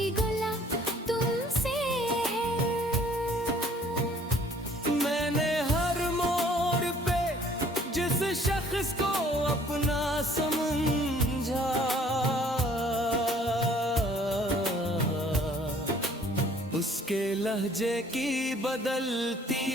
गला तुमसे है। मैंने हर मोड़ पे जिस शख्स को अपना समझा, उसके लहजे की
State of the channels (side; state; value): both; normal; correlation 0.57